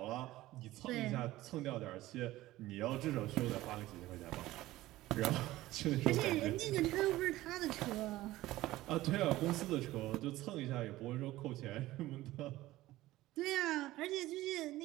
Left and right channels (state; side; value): quieter; left; 16.7 dB